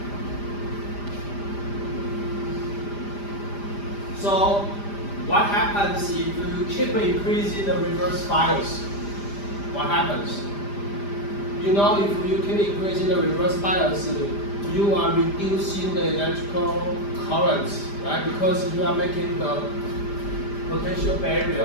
So what happens if you keep increasing the reverse bias? What happens? You know, if you keep increasing the reverse bias, you are reducing the electrical currents, right? Because you are making the potential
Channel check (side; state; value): right; late; 5.0 ms